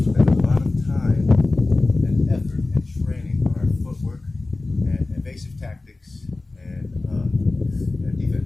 spend a lot of time and effort and training on our footwork and evasive tactics and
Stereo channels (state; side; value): quieter; right; 3.2 dB